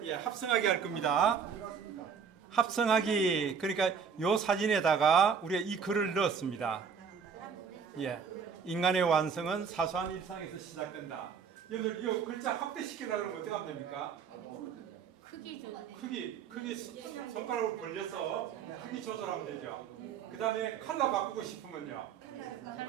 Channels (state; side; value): quieter; left; 6.5 dB